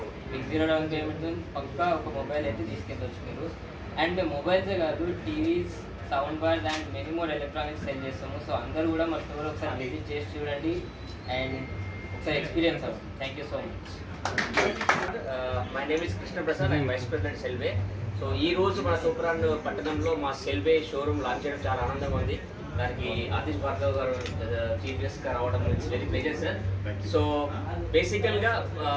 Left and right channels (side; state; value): both; identical; correlation 1.00